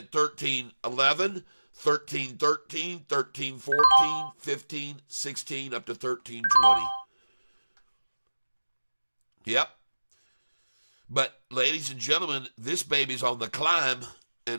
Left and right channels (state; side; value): inverted; both; correlation -1.00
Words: 1311, 1313, 1314, 15, 16, up to 1320. Yep. But, ladies and gentlemen, this baby's on the climb.